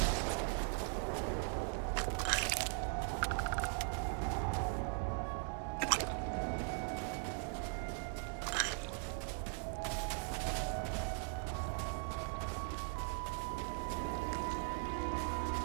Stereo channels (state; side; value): silent; left; 51 dB below the other